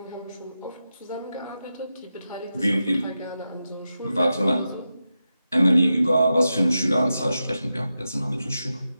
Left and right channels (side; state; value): both; inverted; correlation -0.90